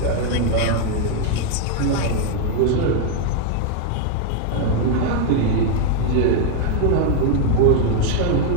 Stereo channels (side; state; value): both; different; correlation 0.00